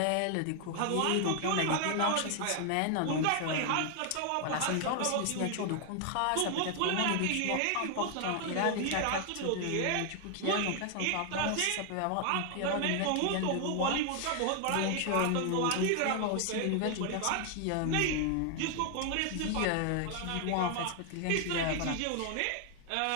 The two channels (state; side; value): different; both; correlation 0.00